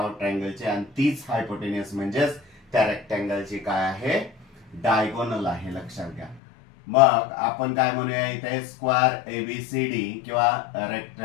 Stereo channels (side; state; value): right; drops out; at 6.4 s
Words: ट्रायंगलचे, आणि तीच हायपोटेनियस म्हणजेच त्या रेक्टँगलची काय आहे, डायगोनल आहे. लक्षात घ्या. मग आपण काय म्हणूया इथे, स्क्वेअर ABCD किंवा